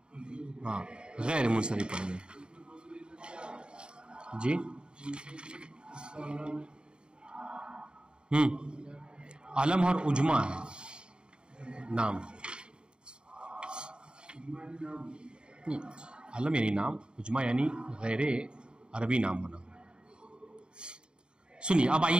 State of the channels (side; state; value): left; late; 0.050 ms